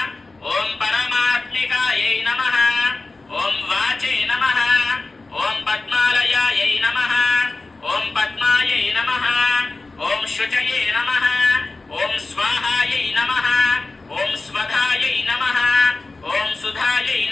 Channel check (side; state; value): right; quieter; 3.4 dB